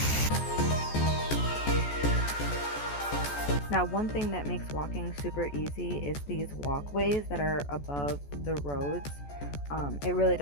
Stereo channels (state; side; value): late; right; 14 ms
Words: Now, one thing that makes walking super easy is these walkways that are above the roads. It really